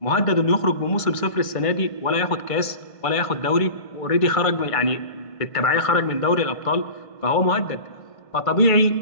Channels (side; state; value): right; late; 1.5 ms